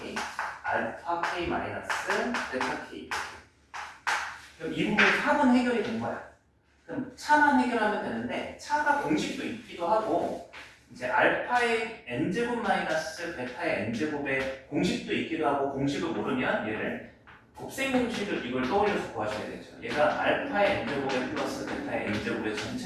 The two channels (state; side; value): identical; both; correlation 1.00